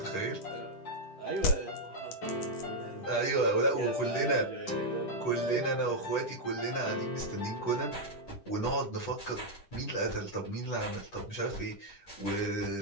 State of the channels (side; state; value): right; late; 10 ms